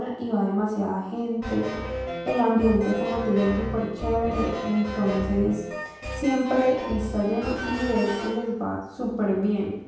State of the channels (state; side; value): identical; both; correlation 1.00